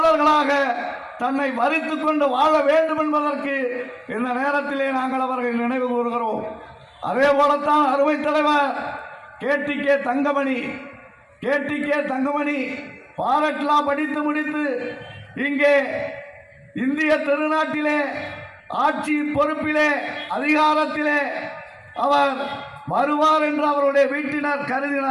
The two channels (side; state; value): both; identical; correlation 1.00